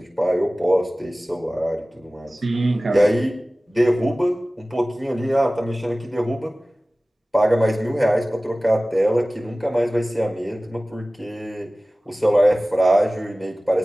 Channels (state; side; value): normal; both; correlation 0.97